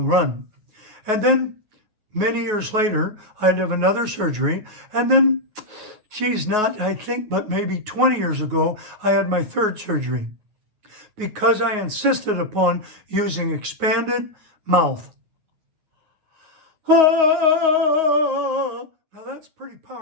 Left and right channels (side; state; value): left; late; 9.4 ms